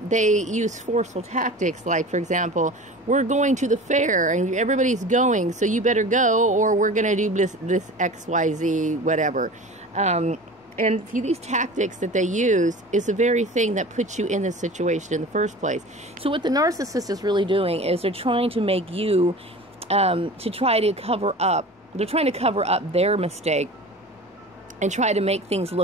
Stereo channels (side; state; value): both; normal; correlation 0.37